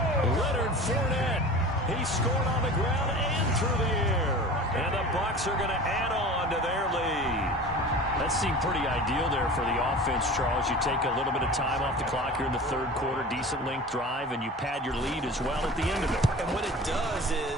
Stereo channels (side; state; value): both; normal; correlation 0.37